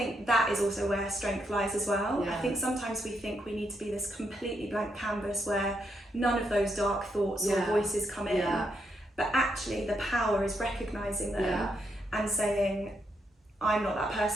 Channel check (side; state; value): both; normal; correlation 0.79